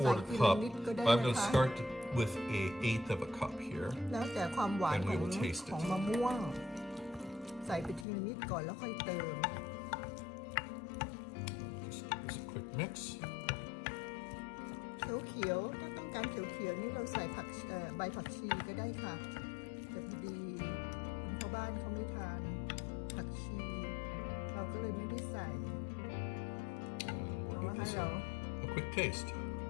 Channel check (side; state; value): right; drops out; at 8.1 s